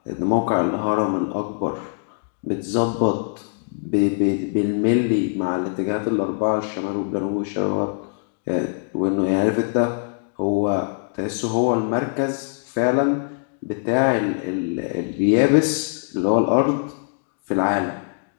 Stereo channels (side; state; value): right; silent; digital silence